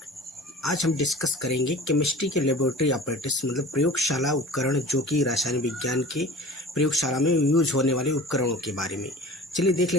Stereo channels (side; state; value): both; normal; correlation 0.40